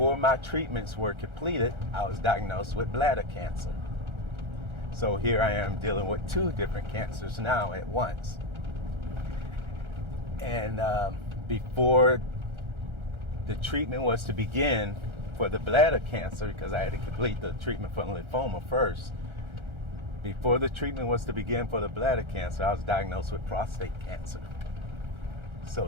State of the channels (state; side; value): late; left; 1.4 ms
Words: my treatments were completed, I was diagnosed with bladder cancer. So here I am dealing with 2 different cancers now at once. And before the treatment was to begin for the bladder cancer, because I had to complete the treatment for lymphoma first, before the treatment was to begin for the bladder cancer, I was diagnosed with prostate cancer. So